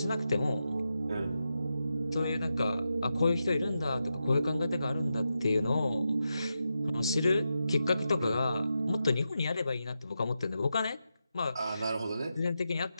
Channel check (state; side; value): inverted; both; correlation -0.88